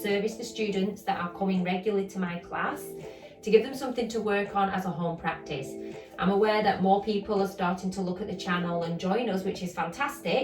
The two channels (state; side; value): identical; both; correlation 1.00